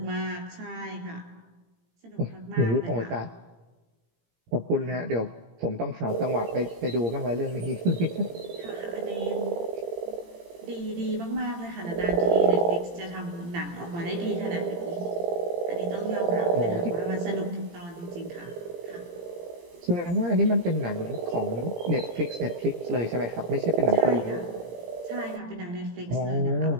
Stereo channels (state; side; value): late; left; 17 ms